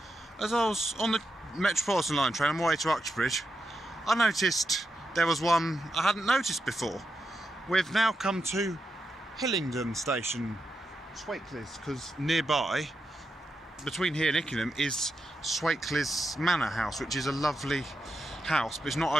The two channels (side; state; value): both; normal; correlation 0.86